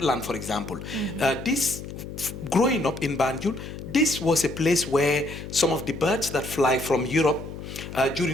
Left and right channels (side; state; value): left; noise; hum, 10 dB below the sound